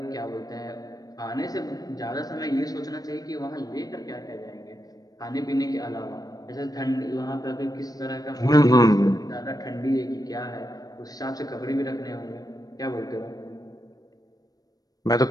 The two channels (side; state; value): right; late; 0.18 ms